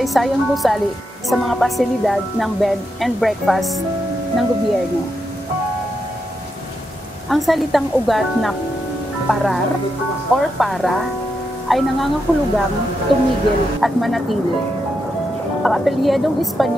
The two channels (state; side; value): normal; both; correlation 0.84